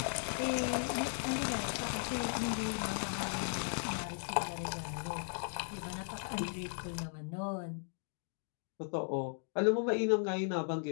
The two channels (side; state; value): right; silent; 53 dB below the other